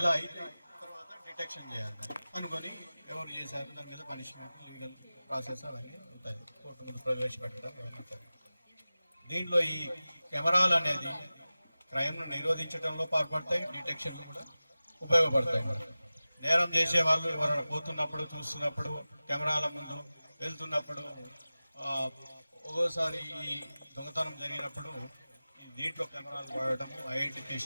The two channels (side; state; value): both; inverted; correlation -0.97